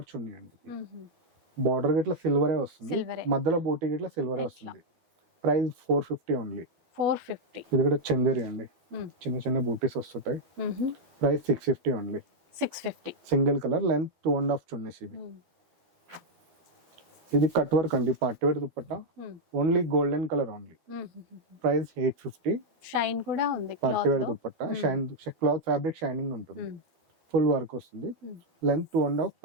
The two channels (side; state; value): left; late; 12 ms